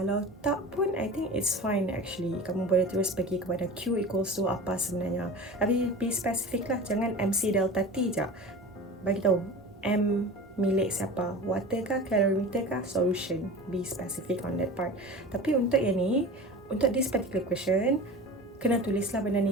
tak pun, I think it's fine actually. Kamu boleh terus pergi kepada Q equals to apa sebenarnya. Tapi be specific lah, jangan MC delta T je. Bagi tahu M milik siapa, water kah, calorimeter kah, solution. Be specific on that part. Tapi untuk yang ni, untuk this particular question, kena tulislah benda ni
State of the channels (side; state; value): both; normal; correlation 0.34